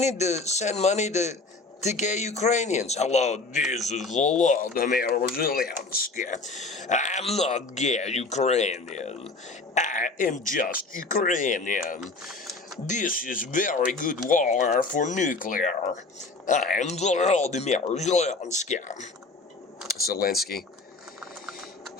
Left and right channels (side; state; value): right; quieter; 3.6 dB